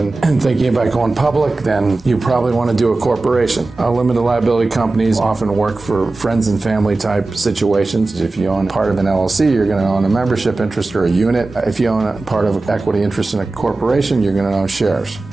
and thinking about going public, then you probably want to do a corporation. Limited liability companies often work for friends and family type situations. If you own part of an LLC, you're going to own a membership interest or a unit. If you own a part of equity interest in a corporation, you're going to own shares.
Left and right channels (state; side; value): quieter; left; 3.3 dB